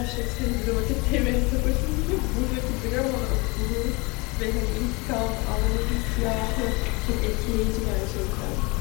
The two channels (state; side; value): quieter; right; 27.1 dB